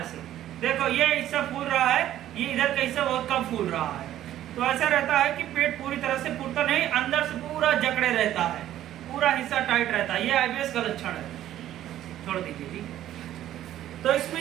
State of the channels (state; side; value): quieter; left; 12.5 dB